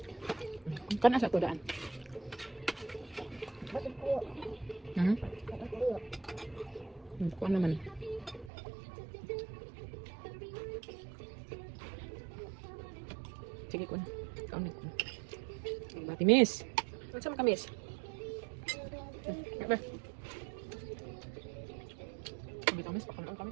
Kana sa to daan. Bakit ko? Bakit ko? Kuha naman. Sige ko na. Kaunit ko. Bati miss. Ano sama ka miss? Ba? Sabi ka miss, pakalaan ka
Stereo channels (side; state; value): left; drops out; at 8.5 s